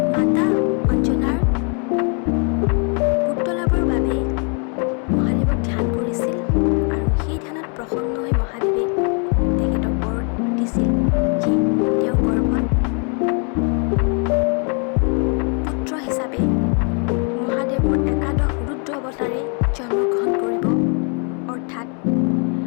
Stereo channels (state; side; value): quieter; right; 39.0 dB